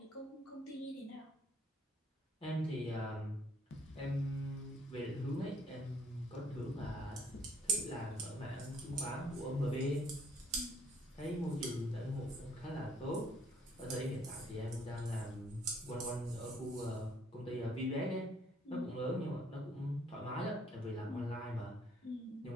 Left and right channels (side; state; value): both; normal; correlation 0.64